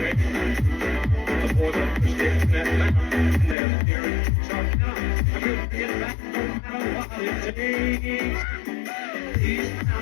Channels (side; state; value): right; drops out; at 3.6 s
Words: The boys up the steps in that mountain, and they're steering, starting out. I couldn't get back no matter what it takes.